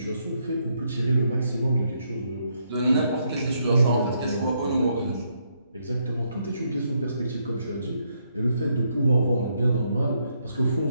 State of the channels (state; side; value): inverted; both; correlation -0.76